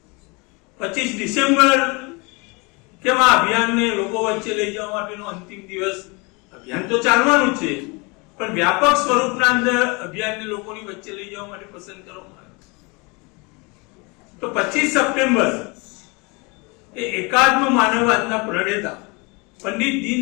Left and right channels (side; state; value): right; quieter; 28.6 dB